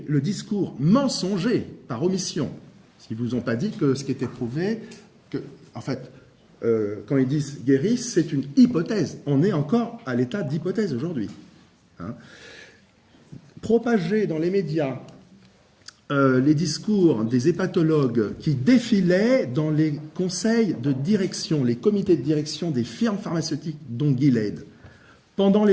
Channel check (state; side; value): identical; both; correlation 1.00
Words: le discours mensonger par omission, s'ils ne vous ont pas dit que ce qui était prouvé, en fait, quand ils disent guérissent, c'est une hypothèse. On est encore à l'état d'hypothèse aujourd'hui. Hein. Propager dans les médias les discours des hépatologues qui défilaient dans les conseils de direction, les comités de direction des firmes pharmaceutiques, dont Gilead, pendant